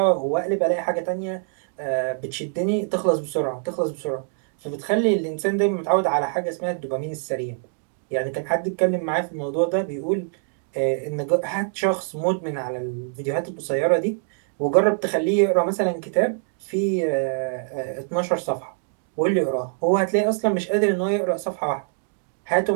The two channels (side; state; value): left; silent; 61 dB below the other